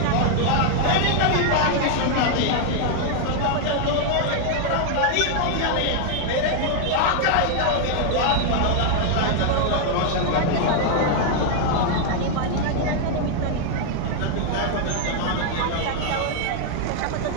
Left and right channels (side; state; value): both; different; correlation 0.00